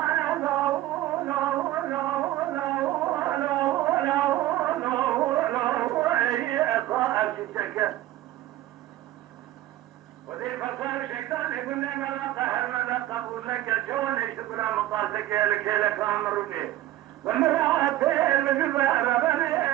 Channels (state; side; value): quieter; left; 14.9 dB